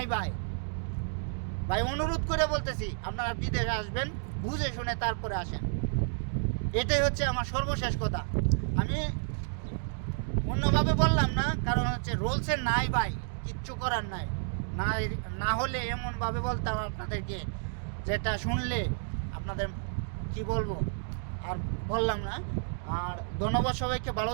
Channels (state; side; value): silent; left; digital silence